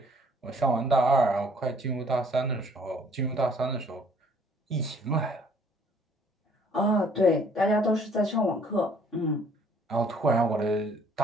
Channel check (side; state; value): both; normal; correlation 0.60